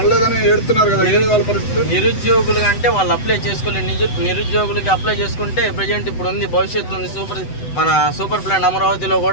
ఏడుతున్నారు కదా, వాళ్ళ పరిస్థితి? నిరుద్యోగులు అంటే వాళ్ళు అప్లై చేసుకోలేదు. నిరుద్యోగులకి అప్లై చేసుకుంటే ప్రజెంట్ ఇప్పుడు ఉంది, భవిష్యత్తు ఉంది. మన సూపర్ ప్లాన్ అమరావతిలో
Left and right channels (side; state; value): right; late; 7.9 ms